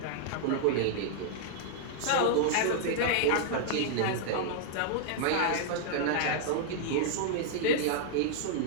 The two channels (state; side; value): different; both; correlation -0.01